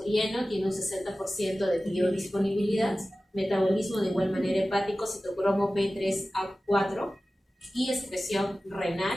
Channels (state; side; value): normal; both; correlation 0.96